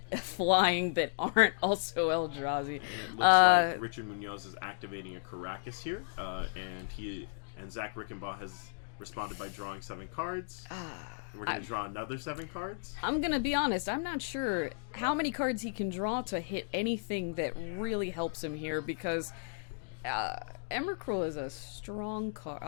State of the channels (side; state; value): right; silent; digital silence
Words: flying that aren't also Eldrazi. And it looks like Richard Munoz is activating a Caracas here, and Zach Rickenbaugh has responded by drawing 7 cards. And we're going to draw another 7 cards. I'm going to be honest, I'm not sure how many cards he can draw to hit anything that really helps him here, because Emrakul is a strong card.